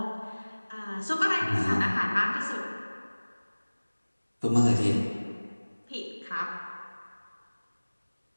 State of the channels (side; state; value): both; inverted; correlation -1.00